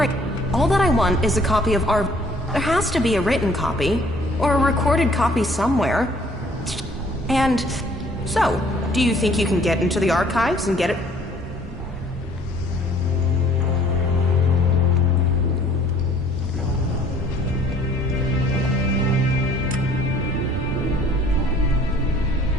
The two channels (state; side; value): normal; both; correlation 0.57